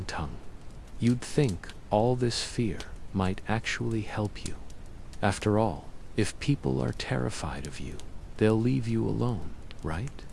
tongue. You'd think all this fear might actually help you. After all, if people are terrified of you, they'll leave you alone, right?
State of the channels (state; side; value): identical; both; correlation 1.00